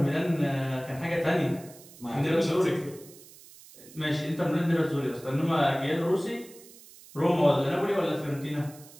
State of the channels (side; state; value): right; noise; hiss, 21 dB below the sound